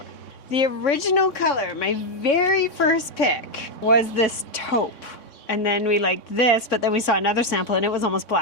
The original color, my very first pick, was this taupe. And then we liked this, but then we saw another sample and it was almost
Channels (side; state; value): right; late; 3.6 ms